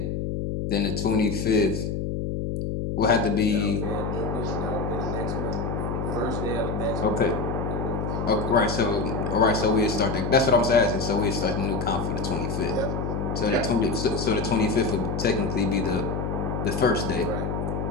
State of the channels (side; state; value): left; noise; hum, 2 dB below the sound